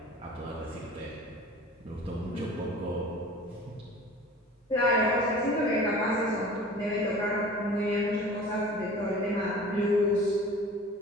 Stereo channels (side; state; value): both; normal; correlation 0.42